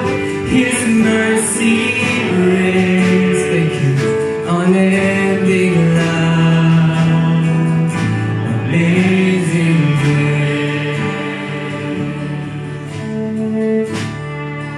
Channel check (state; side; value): identical; both; correlation 1.00